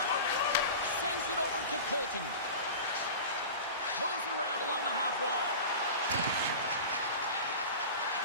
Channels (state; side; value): inverted; both; correlation -0.33